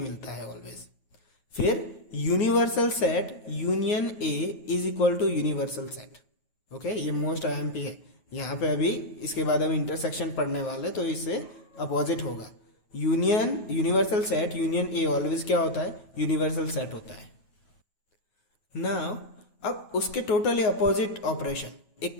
है ऑलवेज। फिर universal set union A is equal to universal set. Okay, ये मोस्ट आईएमपी है यहाँ पे। अभी इसके बाद हम इंटरसेक्शन पढ़ने वाले, तो इससे अपोजिट होगा। Union universal set union a always क्या होता है, यूनिवर्सल सेट होता है। नाउ अब उसके टोटली अपोजिट ऑपरेशन, एक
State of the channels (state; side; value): late; right; 9.3 ms